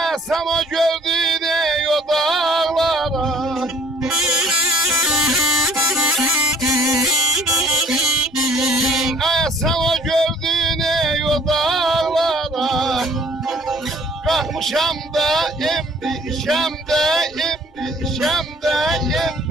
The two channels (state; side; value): normal; both; correlation 0.55